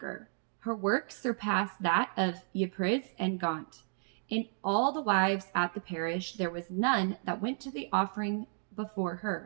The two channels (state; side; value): silent; left; digital silence